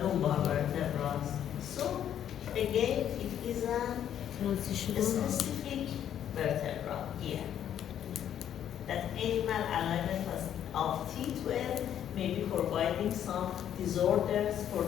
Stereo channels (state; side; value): quieter; right; 10.1 dB